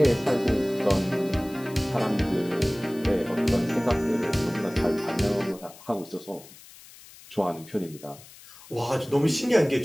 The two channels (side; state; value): left; noise; hiss, 20 dB below the sound